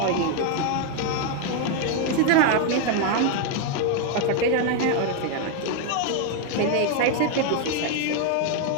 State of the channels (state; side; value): different; both; correlation 0.01